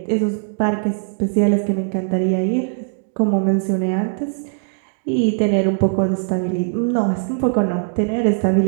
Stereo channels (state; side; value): silent; left; 61 dB below the other